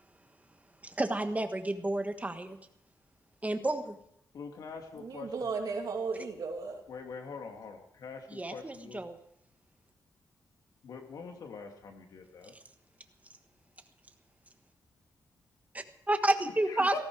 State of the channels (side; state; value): both; normal; correlation 0.84